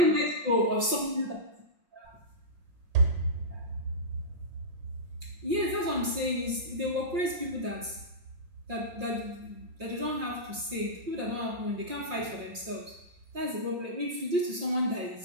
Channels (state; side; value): late; left; 5.6 ms